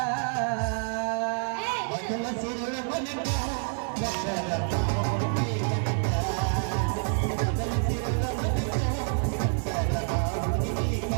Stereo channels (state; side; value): silent; left; 59 dB below the other